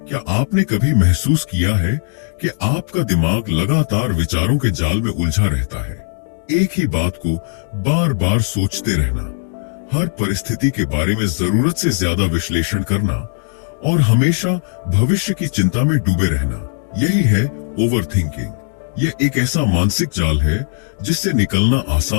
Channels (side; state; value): right; silent; digital silence